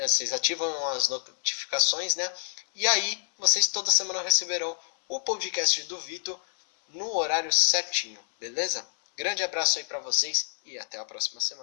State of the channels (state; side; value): silent; right; 60 dB below the other